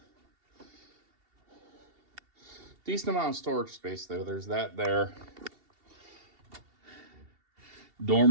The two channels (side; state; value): left; late; 2.7 ms